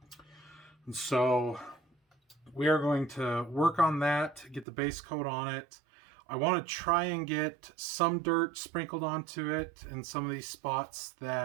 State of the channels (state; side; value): drops out; left; at 4.7 s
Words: And so we are going to work on that, get the base coat on it. I want to try and get some dirt sprinkled onto it in some of these spots